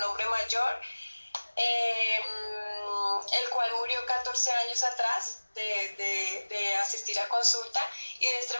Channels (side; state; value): both; inverted; correlation -1.00